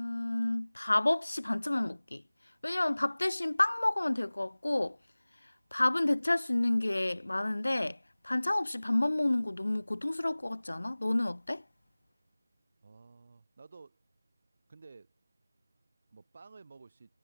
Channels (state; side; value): inverted; both; correlation -1.00